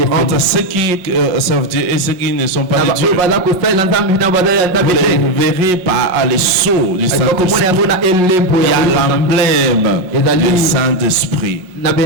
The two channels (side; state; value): left; late; 5.5 ms